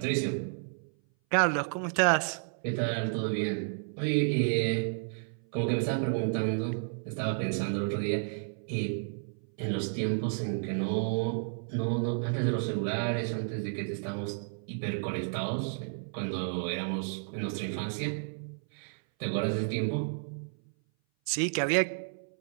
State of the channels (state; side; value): silent; left; 57 dB below the other